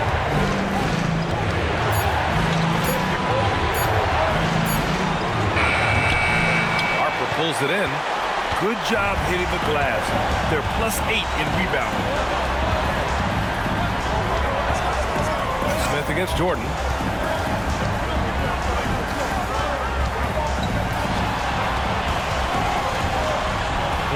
Harper pulls it in. Good job hitting the glass. They're +8 in rebounding. Smith against Jordan.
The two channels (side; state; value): both; identical; correlation 1.00